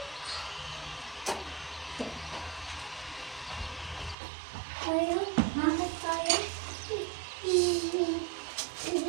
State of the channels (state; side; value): drops out; left; at 4.2 s